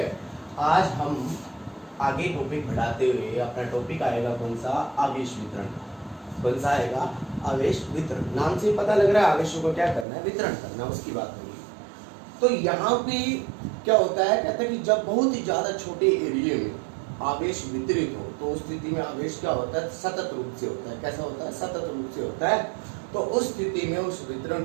आज हम आगे टॉपिक बढ़ाते हुए अपना टॉपिक आएगा कौन सा? आवेश वितरण। कौन सा आएगा? आवेश वितरण। नाम से पता लग रहा है आवेशों को क्या करना है, वितरण करना, उसकी बात होगी। तो यहाँ पे क्या होता है, कहता है कि जब बहुत ही ज्यादा छोटे एरिया में आवेश वितरित हो तो उस स्थिति में आवेश क्या होता है? सतत रूप से होता है। कैसा होता है? सतत रूप से होता है। तो उस स्थिति में उस वितरण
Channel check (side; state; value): left; drops out; at 10.1 s